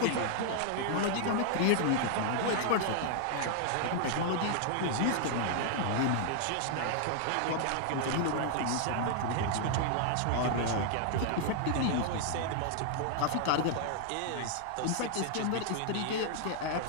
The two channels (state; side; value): different; both; correlation -0.01